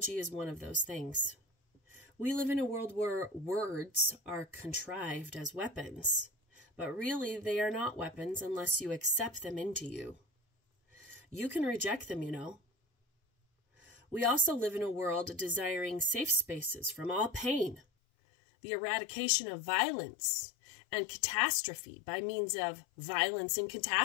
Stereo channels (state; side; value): drops out; right; at 17.8 s